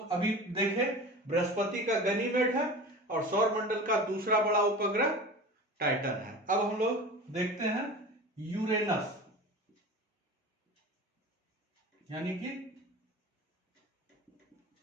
अभी देखे बृहस्पति का गनीमेड है और सौरमंडल का दूसरा बड़ा उपग्रह टाइटन है। अब हम लोग देखते हैं यूरेनस, यानी कि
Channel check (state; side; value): normal; both; correlation 0.34